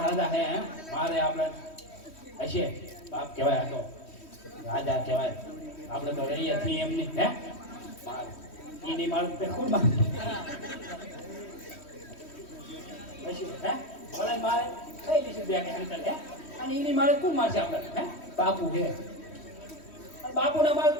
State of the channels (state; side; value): late; right; 3.1 ms